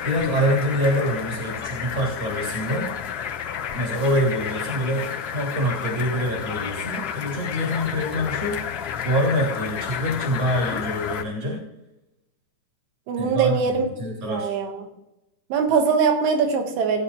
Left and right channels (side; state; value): left; late; 9.4 ms